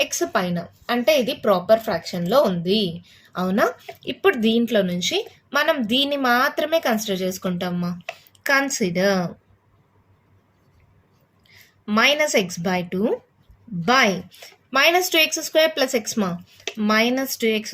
ఎక్స్ పైన, అంటే ఇది ప్రాపర్ ఫ్రాక్షన్లో ఉంది, అవునా? ఇప్పుడు దీంట్లో నుంచి మనం దీన్ని మాత్రమే కన్సిడర్ చేసుకుంటామమ్మా. Consider -x/2 by -2x² plus X మా,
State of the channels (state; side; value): identical; both; correlation 1.00